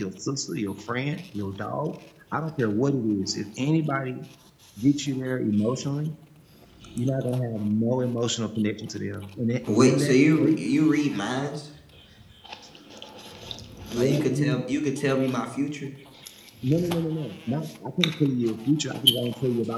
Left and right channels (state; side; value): identical; both; correlation 1.00